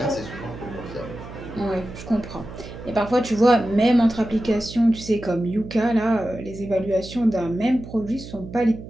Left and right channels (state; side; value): noise; right; hum, 13 dB below the sound